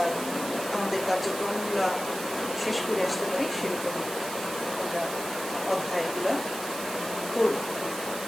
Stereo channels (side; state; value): right; noise; hiss, 9 dB below the sound